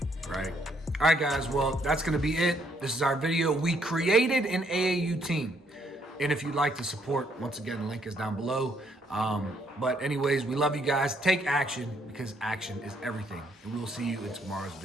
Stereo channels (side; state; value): both; normal; correlation 0.70